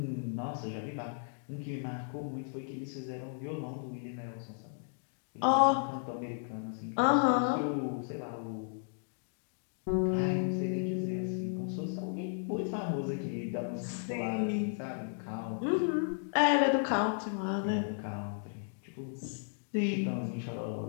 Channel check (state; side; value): silent; right; digital silence